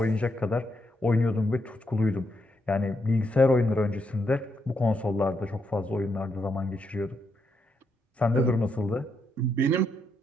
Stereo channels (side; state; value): both; normal; correlation 0.79